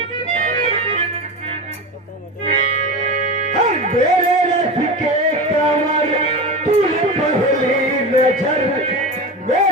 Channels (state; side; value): normal; both; correlation 0.25